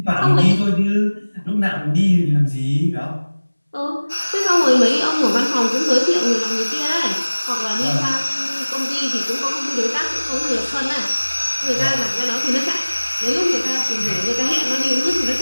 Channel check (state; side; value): inverted; both; correlation -1.00